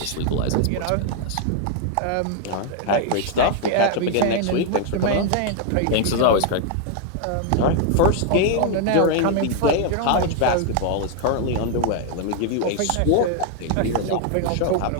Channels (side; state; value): both; different; correlation 0.00